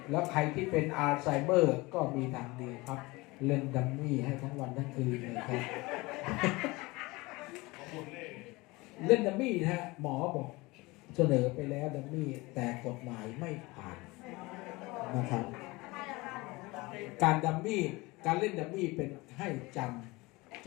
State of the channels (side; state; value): right; quieter; 22.7 dB